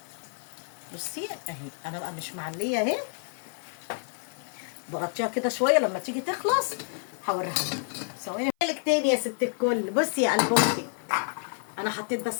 بصي اهي. انا بقى مش معليه اهي. بغطيها كده شويه. لما تيجي تخلص هوريها لك. ثواني لك تاني يا ست الكل. بصي يا قلب اختك. انا حطيت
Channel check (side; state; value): right; silent; 56 dB below the other